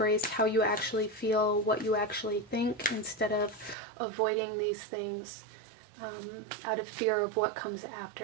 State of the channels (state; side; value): drops out; left; at 3.8 s